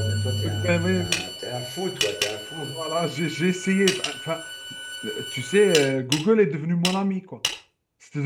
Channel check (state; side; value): identical; both; correlation 1.00